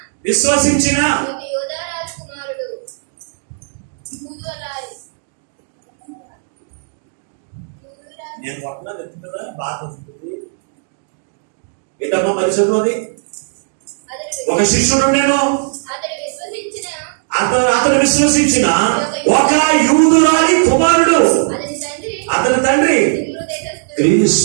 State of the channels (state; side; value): silent; left; digital silence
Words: విశ్వసించిన నేను పట్టణం ఎత్తు కదా బాధ వస్తుంది ఏంటమ్మా మరి చదువుది. ఒక శిష్యుడు నేను అతను విశ్వసించిన ఒక యూదురాలి కుమారుడు, అతని తండ్రి